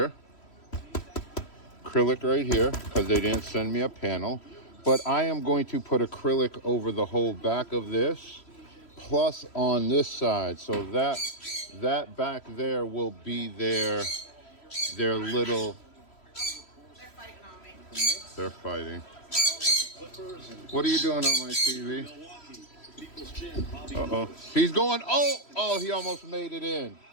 Acrylic right here, because they didn't send me a panel. But I am going to put acrylic over the whole back of this, plus on this side. So that back there will be their little... They're fighting. What are you doing on my TV? Uh-oh. He's going, oh, he almost made it in.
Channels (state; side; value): late; right; 3.1 ms